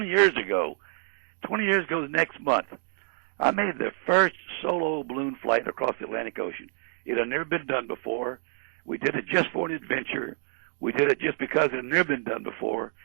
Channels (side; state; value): left; silent; digital silence